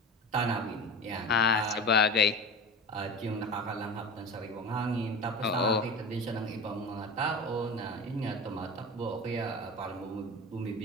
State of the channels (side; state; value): both; normal; correlation 0.31